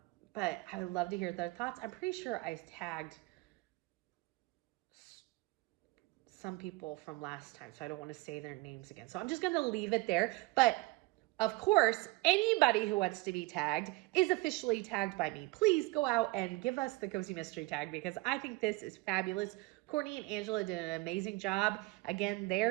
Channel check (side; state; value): left; quieter; 22.6 dB